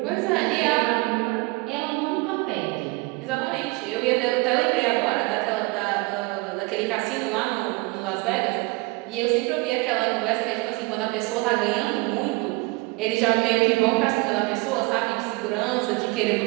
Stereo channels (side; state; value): left; quieter; 25.5 dB